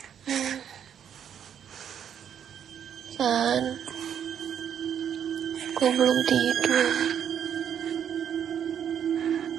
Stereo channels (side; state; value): left; quieter; 8.8 dB